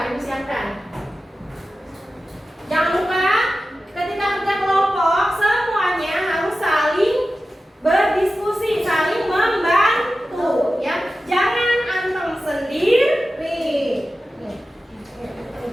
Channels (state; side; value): normal; both; correlation 0.94